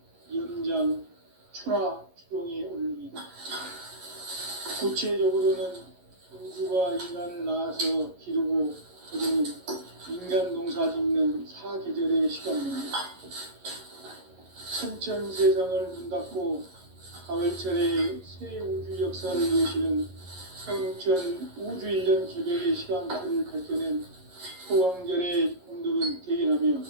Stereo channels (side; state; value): left; late; 11 ms